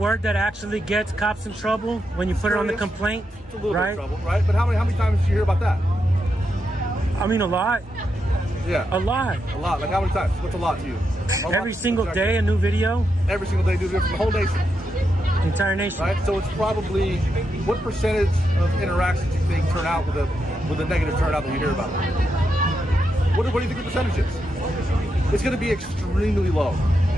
actually gets cops in trouble when you put it on the complaint? It's a little bit of trouble, right? But how many times do you hear about that? I mean, a lot. Yeah. A lot. Like how many times? What's a lot to you? Every single day, a new video. Every single day, new video from the whole nation. Entire nation. Right. So it's probably, what percentage of interactions do you think turn out with a negative turnout that you hear about? What do you think the percentage is? It's going to be extremely low.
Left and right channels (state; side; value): normal; both; correlation 0.84